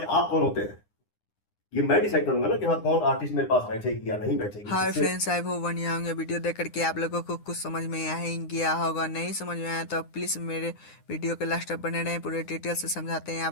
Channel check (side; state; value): right; late; 9.8 ms